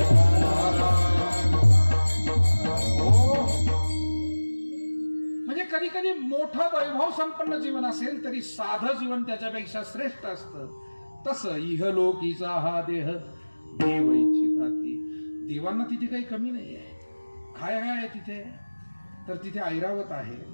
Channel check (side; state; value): both; inverted; correlation -1.00